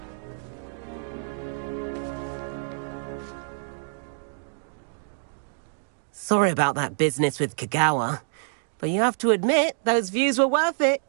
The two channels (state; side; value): silent; left; digital silence